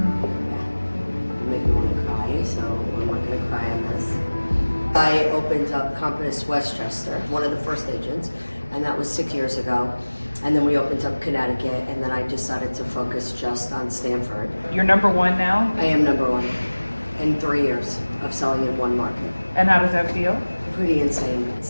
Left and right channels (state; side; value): inverted; both; correlation -1.00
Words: you make me want to cry, so I'm not going to cry on this. I opened up Compass Westchester, one of the first agents, and that was 6 years ago. And then we opened up Connecticut, and then I decided to focus just on Stamford. You're number one now? I am number one in 3 years of selling in one market. And how does that feel? Pretty insane.